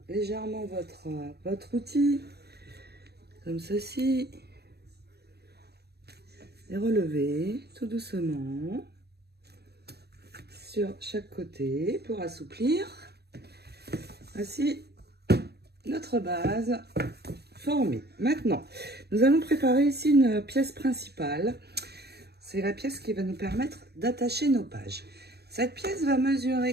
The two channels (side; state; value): left; late; 0.47 ms